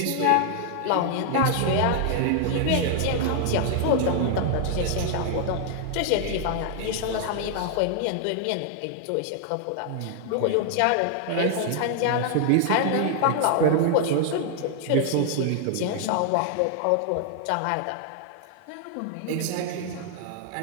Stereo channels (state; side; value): different; both; correlation 0.00